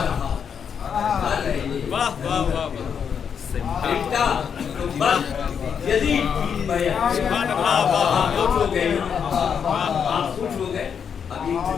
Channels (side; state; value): right; quieter; 7.2 dB